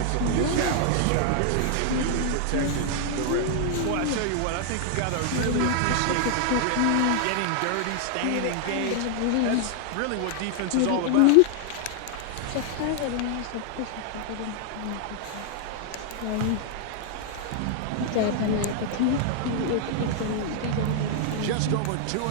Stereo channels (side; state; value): both; different; correlation 0.00